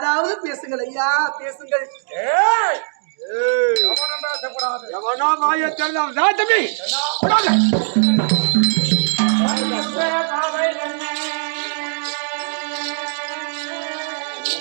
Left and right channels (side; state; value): left; silent; digital silence